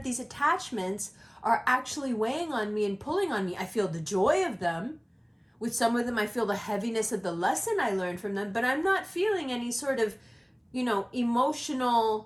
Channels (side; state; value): both; identical; correlation 1.00